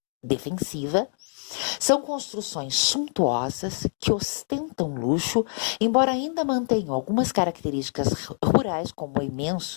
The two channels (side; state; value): right; silent; digital silence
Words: defensiva. São construções suntuosas que ostentam luxo, embora ainda mantenham algumas características rurais, como